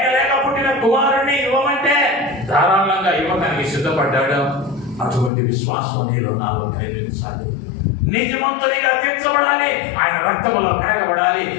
పుట్టిన కుమారుణ్ణి ఇవ్వమంటే ధారాళంగా ఇవ్వడానికి సిద్ధపడ్డాడు. అటువంటి విశ్వాసం నీలో నాలో కలిగించాలి. నీతిమంతునిగా తీర్చబడాలి. ఆయన రక్తములో కడగబడాలి.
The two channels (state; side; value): drops out; right; at 5.3 s